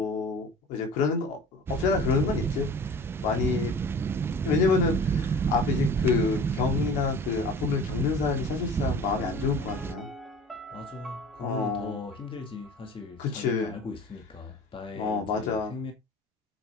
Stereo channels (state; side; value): normal; both; correlation 0.41